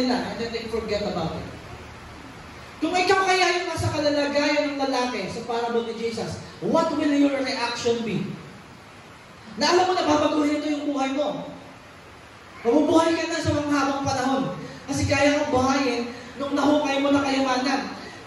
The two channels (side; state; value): both; identical; correlation 1.00